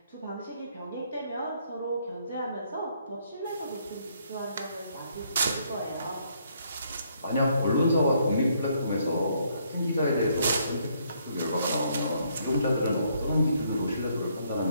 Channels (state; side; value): inverted; both; correlation -0.69